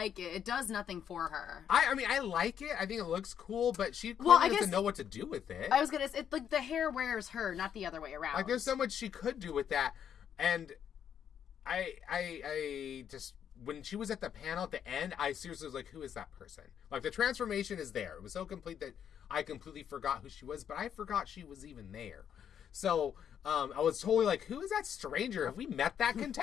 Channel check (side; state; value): right; quieter; 8.8 dB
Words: it. It does nothing for her. I mean, I like it. I think it looks cool, but she clearly doesn't know what to do with it. I was gonna say, like the hair wears her, not the other way around. Like, there's so much she could do with that, and I just when she was at the panel at the end, I seriously was like, who is that person? Like, the transformation is there. It was so complete that I completely forgot who she was, but I forgot she was even there. So I was totally like, who is that stranger? Have we met that